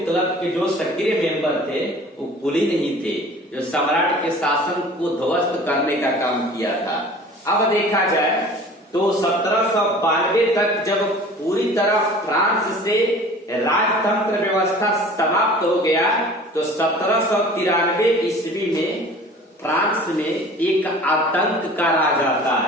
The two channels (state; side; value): normal; both; correlation 0.44